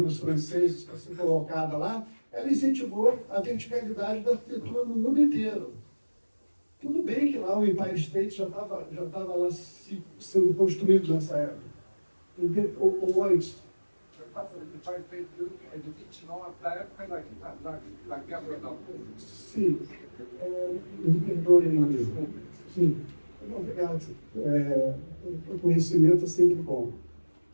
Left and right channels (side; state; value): both; inverted; correlation -1.00